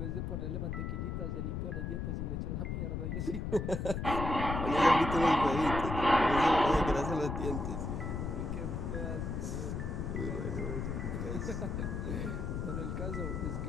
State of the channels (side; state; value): left; noise; rumble, 3 dB below the sound